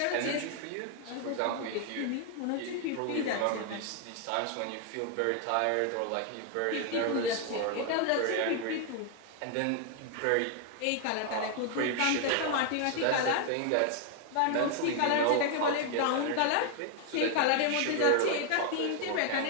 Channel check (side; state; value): both; different; correlation 0.00